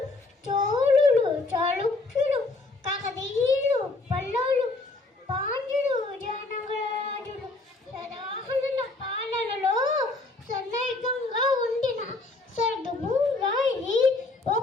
చోళులు చాళుక్యులు కాకతీయులు పల్లవులు పాండ్యులు విజయనగరాజులు సదాహనుల పాలనలో సన్నైకంగా ఉండిన స్వర్గభూరాయి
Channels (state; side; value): quieter; right; 3.2 dB